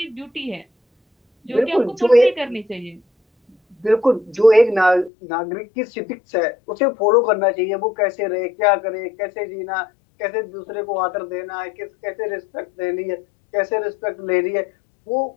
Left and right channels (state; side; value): drops out; right; at 5.1 s